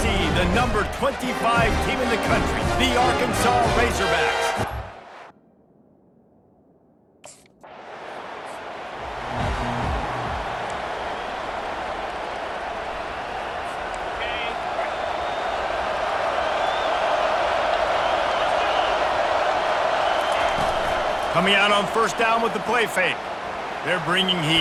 the number 25 team in the country, the Arkansas Razorbacks. Coming out on first down with the play fake. They're bringing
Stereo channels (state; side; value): identical; both; correlation 1.00